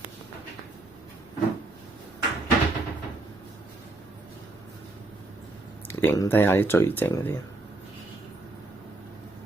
影低下啲最正嗰啲。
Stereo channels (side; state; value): left; quieter; 3.0 dB